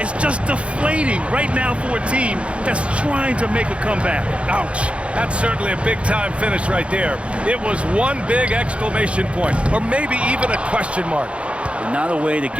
just deflating right now for a team that's trying to make a comeback. Ouch. That's certainly a big-time finish right there. It was one big exclamation point, or maybe even a question mark. Not a way to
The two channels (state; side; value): late; left; 0.060 ms